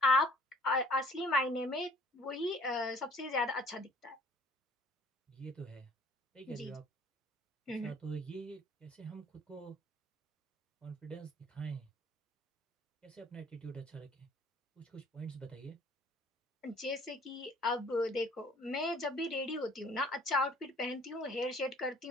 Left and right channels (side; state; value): both; normal; correlation 0.55